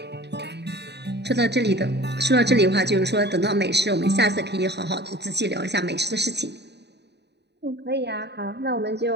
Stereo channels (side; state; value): left; late; 0.49 ms